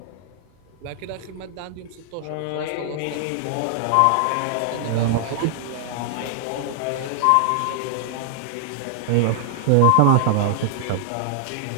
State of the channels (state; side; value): different; both; correlation -0.01